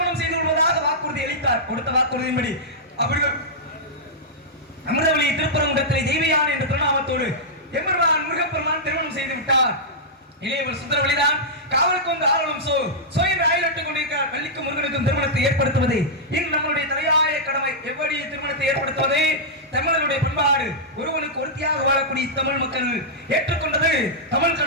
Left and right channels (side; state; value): both; normal; correlation -0.10